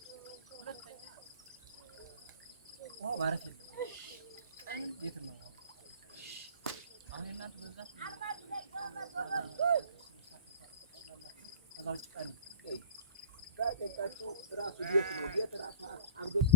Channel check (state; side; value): inverted; both; correlation -0.46